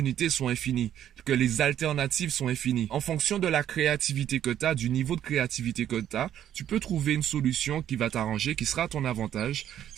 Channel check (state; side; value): quieter; left; 10.8 dB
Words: sont infinies, que les alternatives sont infinies? En fonction de la créativité que tu as, du niveau de créativité que tu as, tu peux trouver une solution qui va t'arranger, qui sera à ton avantage,